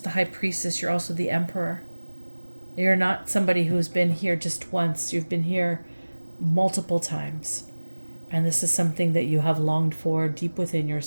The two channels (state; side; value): inverted; both; correlation -1.00